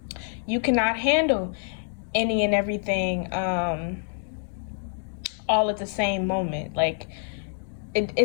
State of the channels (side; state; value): right; silent; digital silence